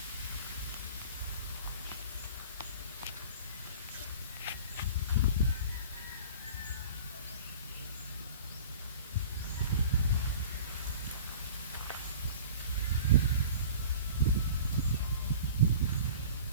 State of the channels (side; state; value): both; inverted; correlation -0.41